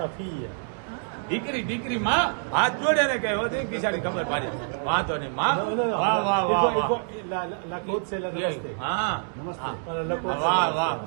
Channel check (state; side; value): silent; left; digital silence